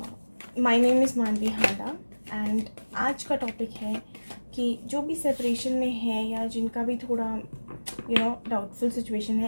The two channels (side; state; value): both; inverted; correlation -1.00